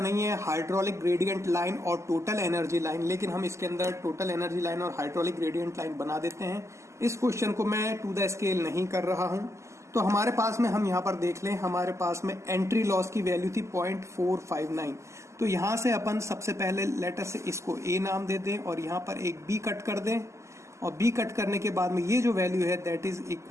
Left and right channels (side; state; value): left; late; 0.14 ms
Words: है हाइड्रोलिक ग्रेडियंट लाइन और टोटल एनर्जी लाइन, लेकिन हम इसके अंदर टोटल एनर्जी लाइन और हाइड्रोलिक ग्रेडियंट लाइन बना देते हैं। इस क्वेश्चन को मैं टू द स्केल नहीं कर रहा हूं। तो हमारे पास में हम यहां पर देख लें, हमारे पास में एंट्री लॉस की वैल्यू थी 0.459। तो यहां से अपन सबसे पहले लेटर से इसको A नाम दे दें और यहां पर एक B कट कर दें, और B कट करने के बाद में ये जो वैल्यू है that is